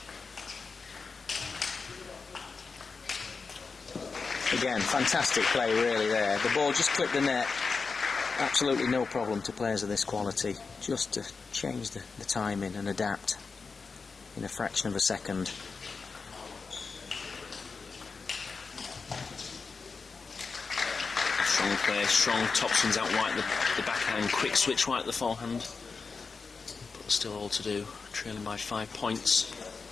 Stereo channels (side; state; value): right; quieter; 4.7 dB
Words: Again, fantastic play really there. The ball just clipped the net. Absolutely no problem to players of this quality. Just to change the timing and adapt in a fraction of a second. Strong play, strong topspins out wide, the backhand, quick switch right at the forehand. But still all to do, trailing by 5 points.